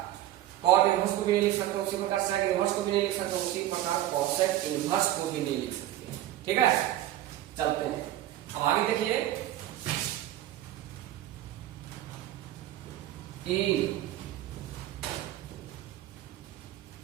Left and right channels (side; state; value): left; quieter; 13.7 dB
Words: कॉट इनवर्स को भी नहीं लिख सकते, उसी प्रकार सेक इनवर्स को भी नहीं लिख सकते, उसी प्रकार कोसेक इनवर्स को भी नहीं लिख सकते। ठीक है, चलते हैं। अब आगे देखिए, in